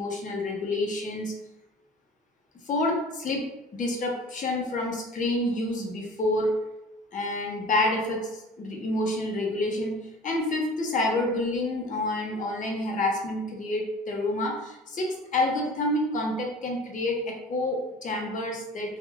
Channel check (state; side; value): normal; both; correlation 0.42